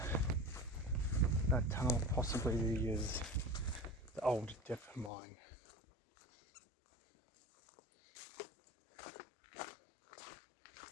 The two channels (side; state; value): right; drops out; at 5.1 s